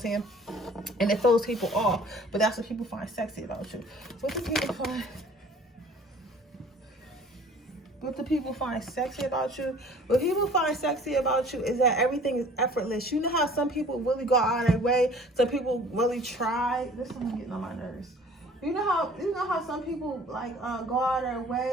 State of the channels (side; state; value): both; normal; correlation 0.50